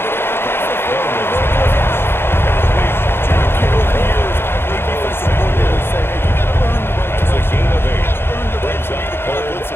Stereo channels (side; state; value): right; late; 0.11 ms